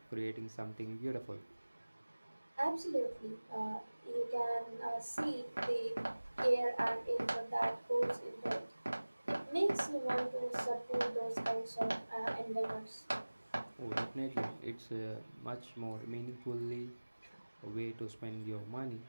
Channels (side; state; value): both; inverted; correlation -1.00